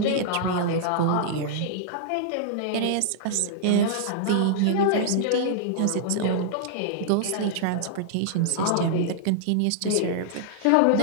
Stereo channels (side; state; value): both; different; correlation -0.01